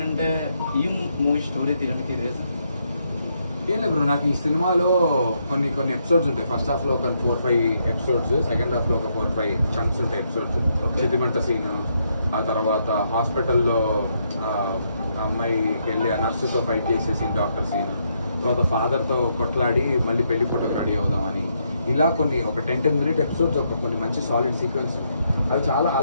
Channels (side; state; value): both; inverted; correlation -0.77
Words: ఈ మూవీ స్టోరీ తీయడానికి రీజన్ ఏం లేదు బ్రో, నాకు ఈ సినిమాలో కొన్ని ఎపిసోడ్స్ ఉంటాయి. ఫస్ట్ హాఫ్ లో ఒక 4-5 ఎపిసోడ్స్, సెకండ్ హాఫ్ లో ఒక 4-5 చంక్స్ ఉంటాయి ఎపిసోడ్స్. సెంటిమెంట్ సీన్, ఆ తర్వాత హాస్పిటల్లో అమ్మాయికి వెళ్ళి ఆ నర్సుతో ఫైట్ చేసే సీన్, డాక్టర్ సీన్, తర్వాత ఫాదర్ తో కొట్లాడి మళ్ళీ పెళ్లి ఫోటోకి రెడీ అవుదామని, ఇలా కొన్ని ఒక 10 మినిట్ ఎపిసోడ్స్, ఒక కొన్ని మంచి సాలిడ్ సీక్వెన్స్. అవి చాలా